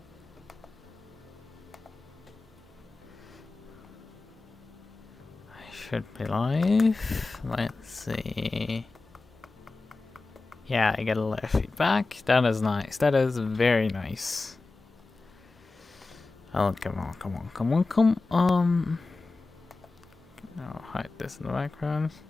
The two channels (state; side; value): quieter; right; 3.6 dB